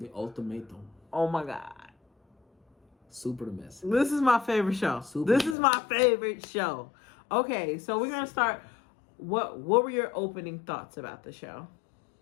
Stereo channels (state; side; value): drops out; right; at 5.6 s